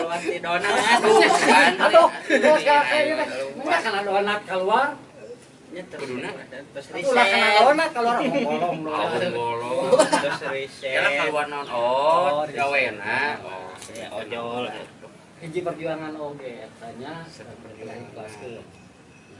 di donat. Kan. aduh terus kayak ini kan ada donat keluar Nyeter. Kuduna. Terus ulah kana riset. donat keluar ngolong Bolong. Terus riset. Kira keluar naon? Oh, gawena. Oh, Ya ojol. hiji perjuangan oge etanya berkelahi ikhlas ke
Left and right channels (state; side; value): identical; both; correlation 1.00